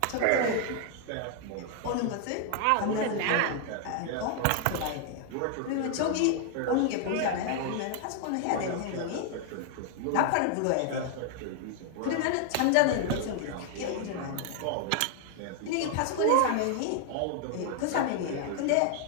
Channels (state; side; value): different; both; correlation 0.00